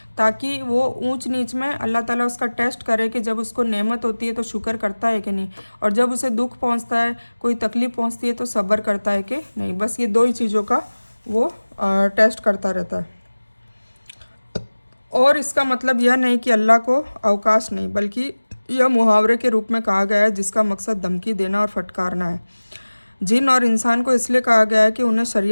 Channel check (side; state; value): both; inverted; correlation -1.00